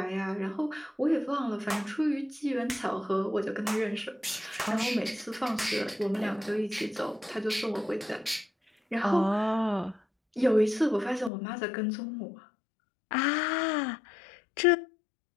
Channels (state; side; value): drops out; right; at 11.3 s